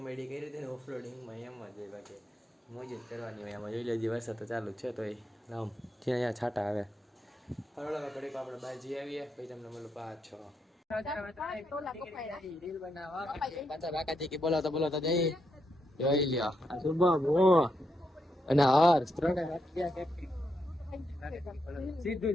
કરી હતી ને ઓફરોડિંગમાં એમ જ હોય. બાકી મોજ જ કરવાની હોય એમાં. જોઈ લેજે વરસાદ તો ચાલુ છે તો રામ છે અહીંયા છાંટા આવે. હરોળ ઘડીક આપણે બહાર જઈ આવીએ પછી તમને મળું પાછો. બોલાવતા જઈ જોઈ લ્યો. શુભમ અને હર્ષ ત્રણે સીધું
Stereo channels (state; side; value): normal; both; correlation 0.81